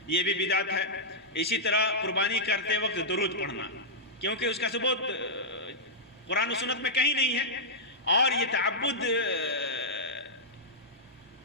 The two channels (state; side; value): normal; both; correlation -0.09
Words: یہ بھی بدعت ہے۔ اسی طرح قربانی کرتے وقت درود پڑھنا، کیونکہ اس کا ثبوت قرآن و سنت میں کہیں نہیں ہے، اور یہ تعبد